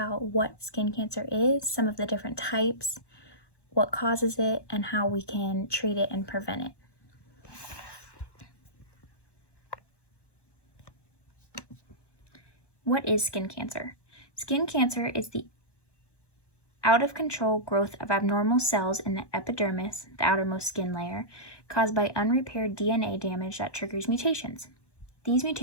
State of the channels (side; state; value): right; late; 1.2 ms